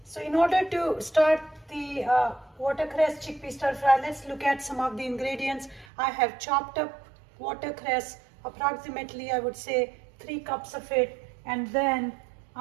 in order to start the watercress chickpea stir fry, let's look at some of the ingredients. I have chopped up watercress, approximately I would say 3 cups of it, and then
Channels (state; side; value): drops out; left; at 5.9 s